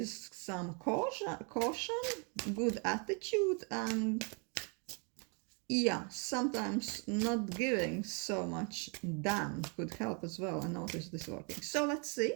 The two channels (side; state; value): left; quieter; 35.7 dB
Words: some caution, good attitude, and yeah, sometimes not giving so much damn could help as well. I noticed this working. So let's see